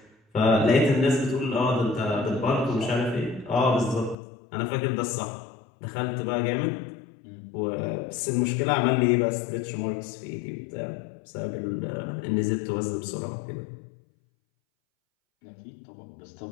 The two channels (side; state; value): right; drops out; at 4.2 s